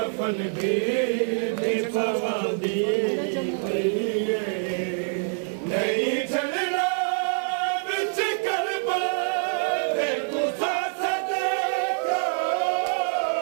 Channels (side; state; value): left; silent; 55 dB below the other